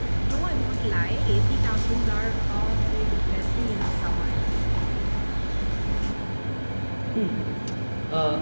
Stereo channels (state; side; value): inverted; both; correlation -1.00